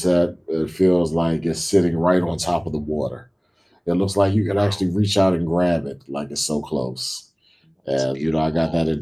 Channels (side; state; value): both; identical; correlation 1.00